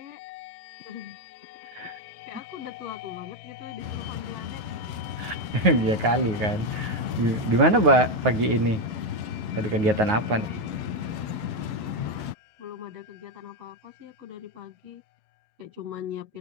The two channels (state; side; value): late; left; 9.4 ms